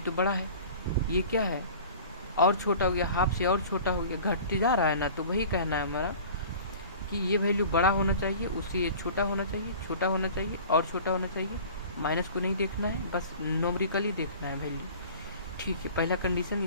बड़ा है। ये क्या है, और छोटा हो गया, हाफ से और छोटा हो गया, घटते जा रहा है ना। तो वही कहना है हमारा कि ये वैल्यू बड़ा होना चाहिए, उससे ये छोटा होना चाहिए, छोटा होना चाहिए और छोटा होना चाहिए। माइनस को नहीं देखना है, बस नोमरिकली देखना है वैल्यू। ठीक है, पहला कंडीशन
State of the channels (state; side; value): inverted; both; correlation -0.42